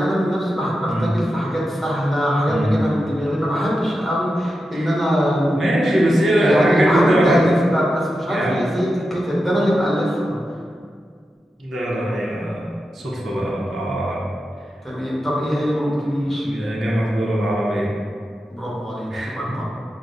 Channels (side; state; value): both; normal; correlation 0.89